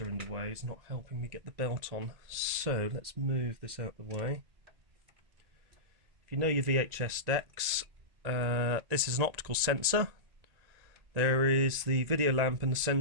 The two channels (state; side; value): late; left; 1.9 ms